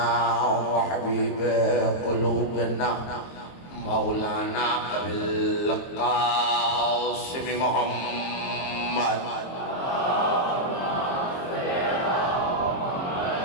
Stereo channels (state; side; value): late; right; 22 ms